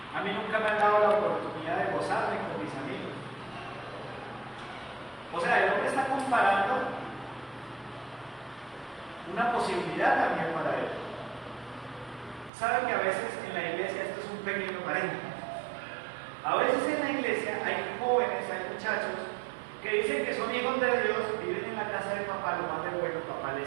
a mí nunca me han dado la oportunidad de gozarme con mis amigos. O sea, el hombre está comparando una posibilidad también para él. Saben que a veces en la iglesia, esto es un pequeño paréntesis, a veces en la iglesia hay jóvenes, hay muchachos que dicen que son hijos de Dios, viven en la casa de papá, lo más de bueno, papá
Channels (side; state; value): left; drops out; at 12.5 s